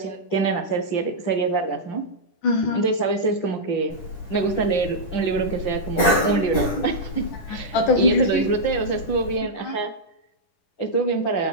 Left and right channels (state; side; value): late; right; 10 ms